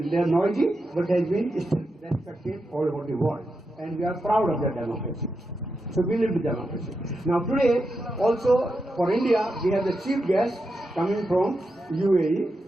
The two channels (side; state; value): both; normal; correlation 0.87